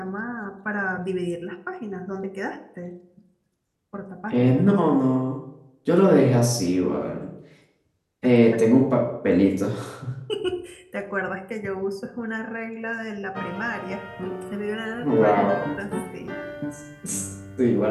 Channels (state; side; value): identical; both; correlation 1.00